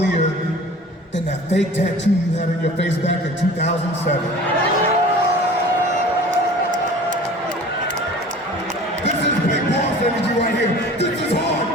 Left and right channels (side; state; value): both; normal; correlation 0.43